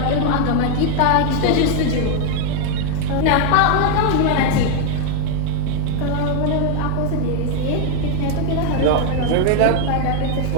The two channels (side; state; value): both; different; correlation 0.00